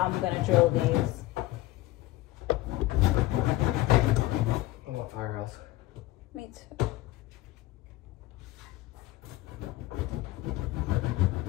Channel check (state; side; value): quieter; right; 17.4 dB